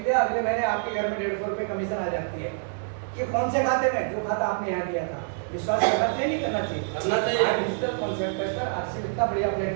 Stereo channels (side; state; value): left; silent; 61 dB below the other